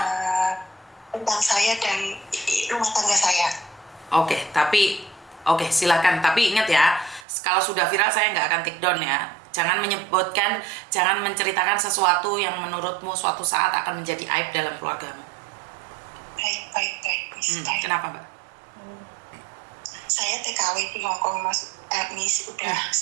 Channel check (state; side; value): drops out; left; at 7.2 s